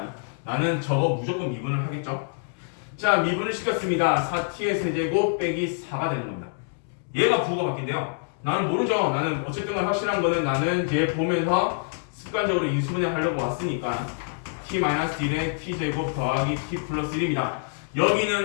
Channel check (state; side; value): silent; right; digital silence